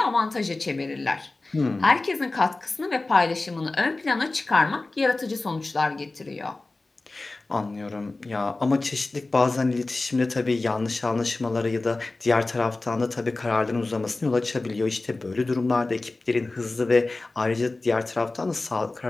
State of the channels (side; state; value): right; quieter; 3.2 dB